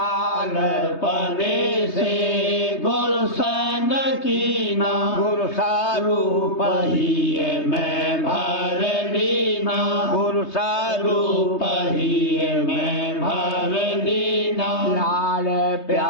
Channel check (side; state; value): right; late; 3.2 ms